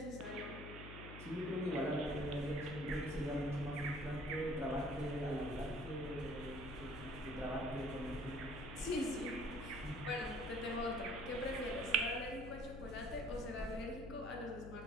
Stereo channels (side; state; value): left; noise; hum, 10 dB below the sound